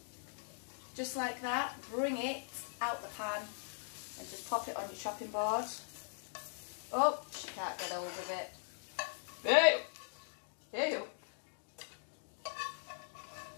Just like that, bring it out the pan and just pop it on your chopping board. Oh, she can't get hold of it. Ew! Ew!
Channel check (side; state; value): right; silent; digital silence